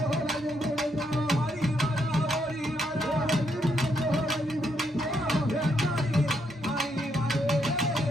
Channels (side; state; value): both; normal; correlation 0.76